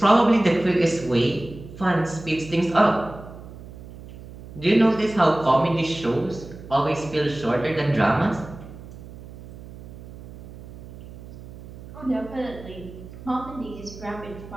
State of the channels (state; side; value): noise; right; hum, 16 dB below the sound